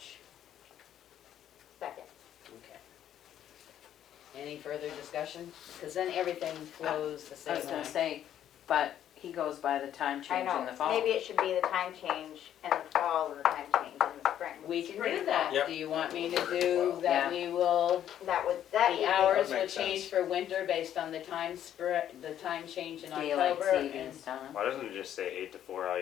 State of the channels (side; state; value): right; quieter; 10.7 dB